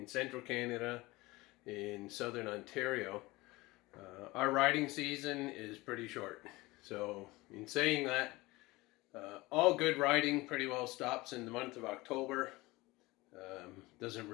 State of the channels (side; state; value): right; quieter; 21.1 dB